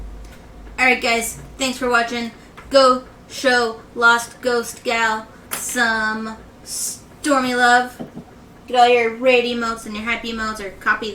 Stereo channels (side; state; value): both; identical; correlation 1.00